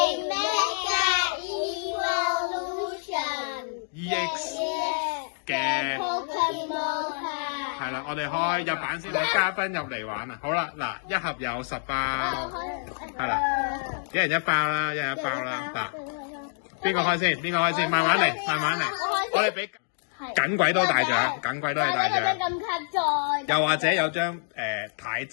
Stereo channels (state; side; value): silent; right; digital silence